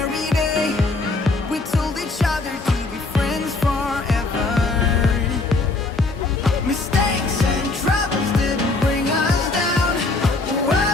day we told each other to be friends forever. Mistakes and troubles didn't bring us down.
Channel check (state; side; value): quieter; right; 3.4 dB